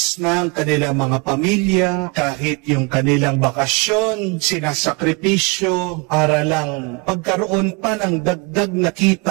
na ang kanilang mga pamilya, kahit yung kanilang bakasyon, sinasakripisyo para lang pagkaroon pa ng dagdag na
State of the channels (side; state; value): left; quieter; 30.4 dB